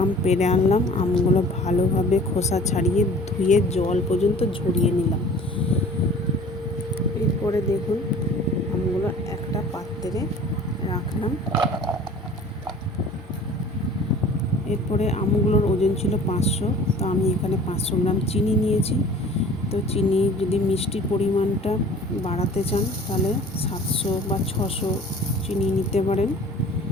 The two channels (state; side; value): normal; both; correlation 0.46